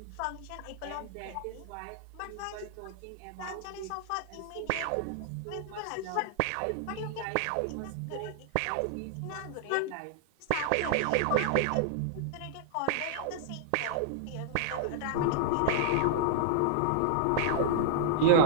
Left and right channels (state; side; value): different; both; correlation -0.01